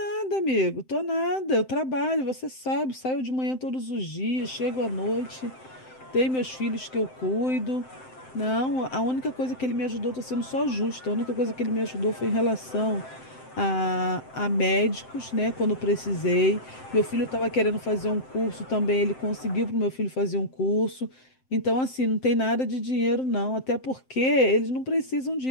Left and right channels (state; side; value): late; right; 7.7 ms